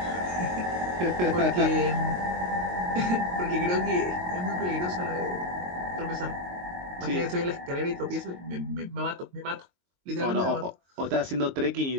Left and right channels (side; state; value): left; late; 22 ms